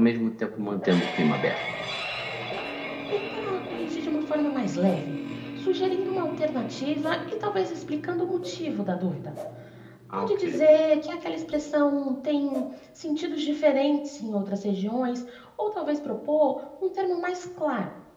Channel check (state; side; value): identical; both; correlation 1.00